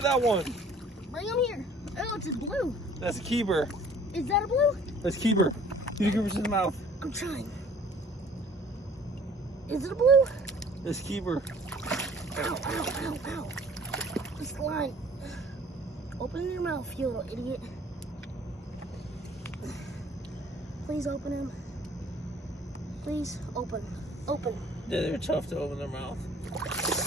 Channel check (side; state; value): both; normal; correlation 0.53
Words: that one. Bring him here. Oh, it's a blue. That's a keeper. Is that a blue? That's a keeper. Get the grippers in the mouth. I'm trying. Is it a blue? That's a keeper. Ow, ow, ow, ow. This line. Open your mouth, you little idiot. Please open him. Please open. Open. Yeah, they're tough to open their mouth.